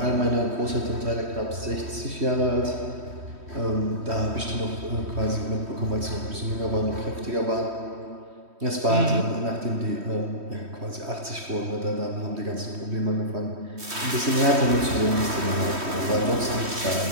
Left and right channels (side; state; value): left; late; 3.1 ms